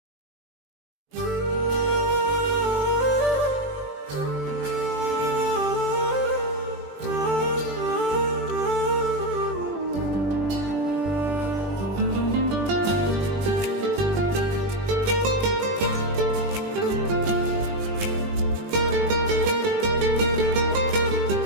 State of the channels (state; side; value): late; left; 20 ms